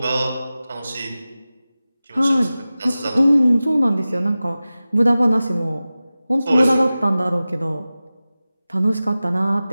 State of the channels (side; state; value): both; inverted; correlation -0.96